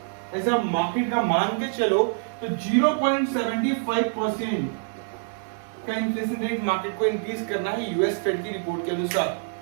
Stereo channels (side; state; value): left; silent; digital silence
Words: ऐसा मार्केट का मान के चलो तो 0.75% का इन्फ्लेशन रेट मार्केट को इंक्रीज करना है यूएस फेड की रिपोर्ट के अनुसार,